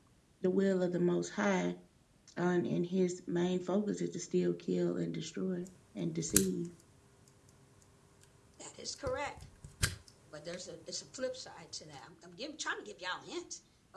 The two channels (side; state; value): both; identical; correlation 1.00